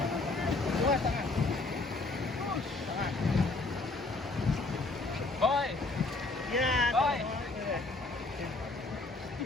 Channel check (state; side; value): quieter; right; 3.3 dB